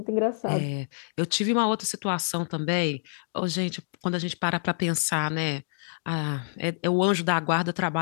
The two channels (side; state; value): right; silent; digital silence